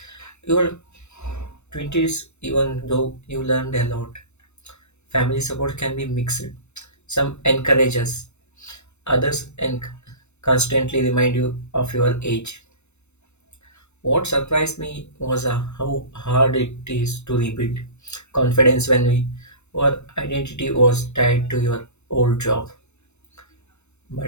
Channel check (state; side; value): late; right; 0.82 ms